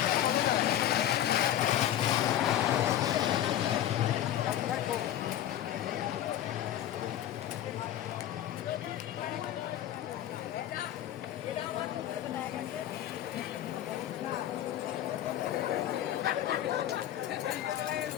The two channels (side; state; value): right; quieter; 12.0 dB